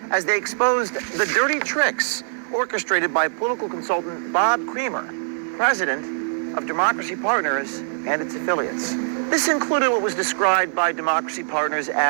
as they exposed the dirty tricks orchestrated by political consultant Bob Creamer, president of Democracy Partners and its affiliates. This included what was described by Democracy Partners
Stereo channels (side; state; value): left; silent; digital silence